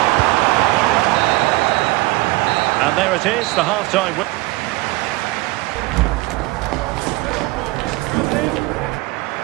And there it is, the half-time win.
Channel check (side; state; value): left; quieter; 20.9 dB